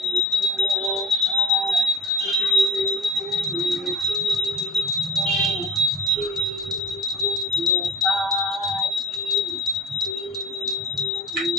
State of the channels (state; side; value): normal; both; correlation 0.44